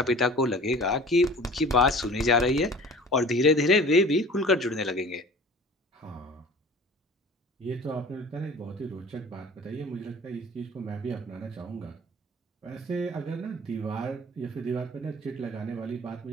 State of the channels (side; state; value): both; normal; correlation 0.43